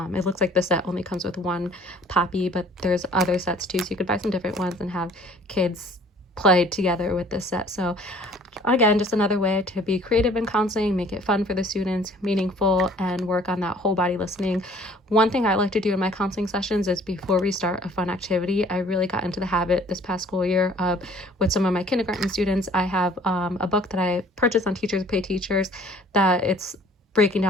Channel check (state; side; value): normal; both; correlation 0.54